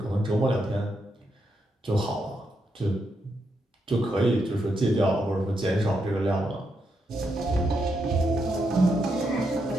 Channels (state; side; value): normal; both; correlation 0.81